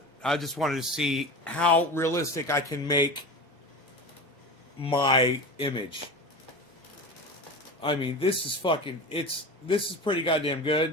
I just wanted to see how realistic I can make my image. I mean, this is fucking, this is pretty goddamn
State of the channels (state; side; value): normal; both; correlation 0.29